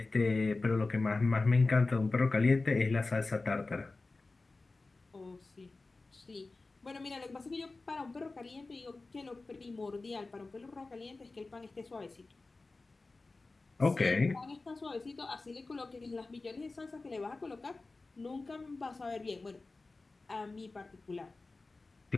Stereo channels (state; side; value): quieter; right; 3.5 dB